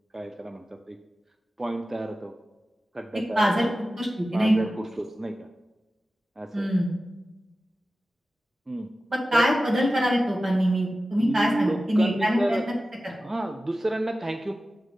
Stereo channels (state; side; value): normal; both; correlation 0.95